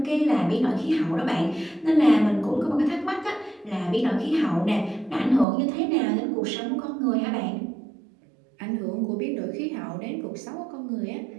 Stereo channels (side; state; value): left; drops out; at 5.5 s